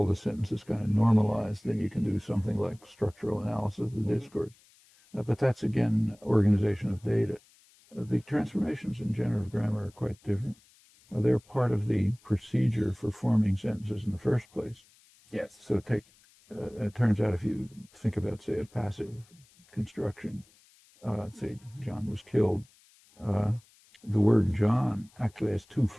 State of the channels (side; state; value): left; noise; hiss, 30 dB below the sound